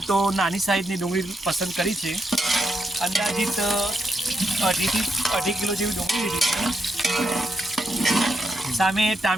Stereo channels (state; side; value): normal; both; correlation 0.82